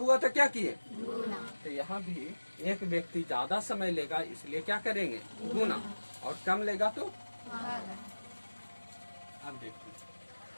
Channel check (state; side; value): inverted; both; correlation -1.00